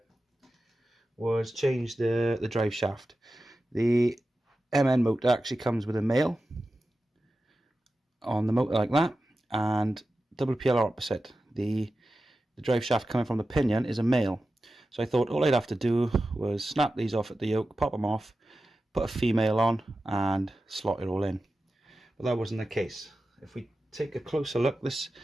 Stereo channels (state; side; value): normal; both; correlation 0.93